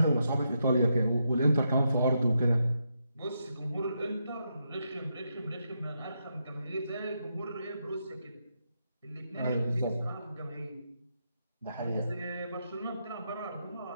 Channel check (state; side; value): inverted; both; correlation -0.82